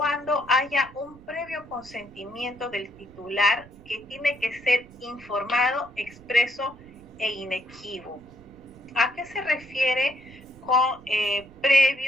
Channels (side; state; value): right; noise; rumble, 22 dB below the sound